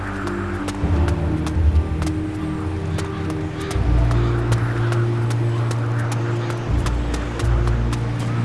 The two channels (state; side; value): identical; both; correlation 1.00